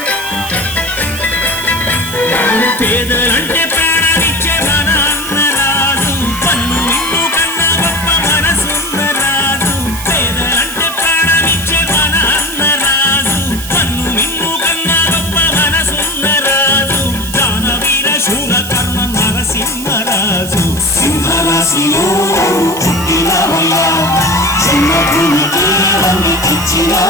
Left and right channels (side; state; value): right; noise; hiss, 10 dB below the sound